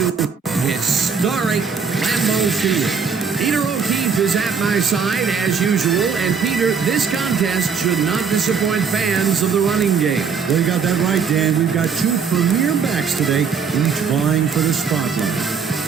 historic Lambeau Field. Peter O'Keefe is at my side, as usual. And, Peter, this contest should not disappoint fans of the running game. Well, you got that right, Dan. We've got 2 premier backs today, each vying for the spotlight.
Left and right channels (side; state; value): left; quieter; 6.0 dB